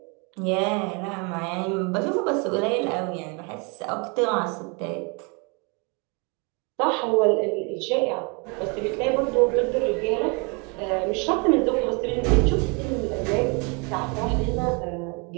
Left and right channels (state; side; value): quieter; left; 32.2 dB